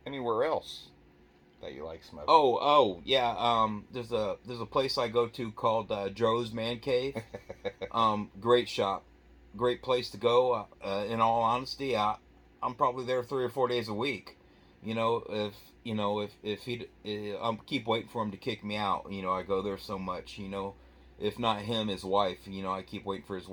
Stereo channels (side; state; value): both; identical; correlation 1.00